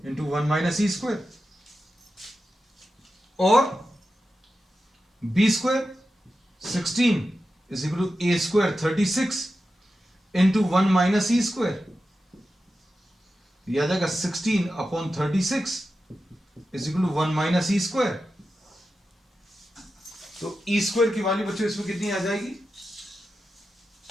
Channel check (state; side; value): normal; both; correlation 0.91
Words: into 1 minus E square, और B square 16 is equal to A square 36 into 1 minus E square. याद आएगा 16 upon 36 is equal to 1 minus E square. तो E square की value बच्चों इसमें कितनी आ जाएगी?